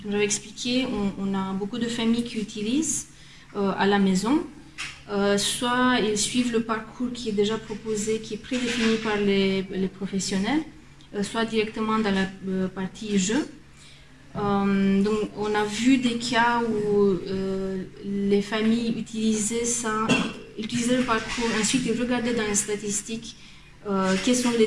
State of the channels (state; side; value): identical; both; correlation 1.00